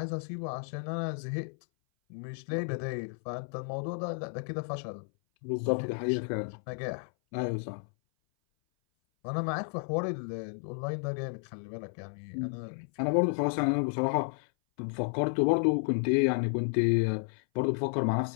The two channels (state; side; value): silent; right; 56 dB below the other